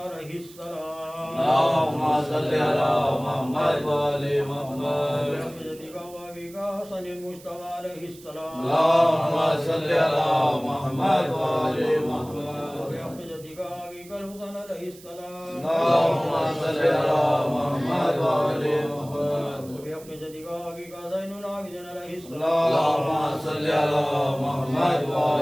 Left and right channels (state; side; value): noise; right; hiss, 21 dB below the sound